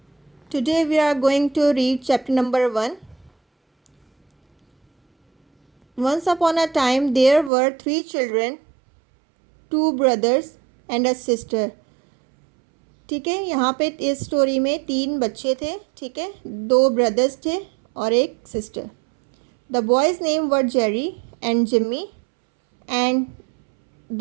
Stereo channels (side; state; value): left; drops out; at 7.5 s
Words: Today we are going to read chapter number 1. Once upon a time there were 3 children, 2 brothers and a sister. ठीक है, यहाँ पे इस स्टोरी में 3 बच्चे थे. ठीक है, 2 ब्रदर्स थे और एक sister. The boys' name were Jerry and Jimmy and